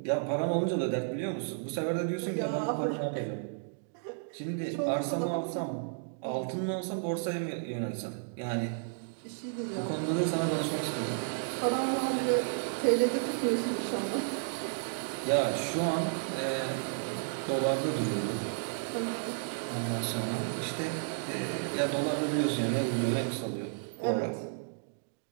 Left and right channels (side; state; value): left; silent; digital silence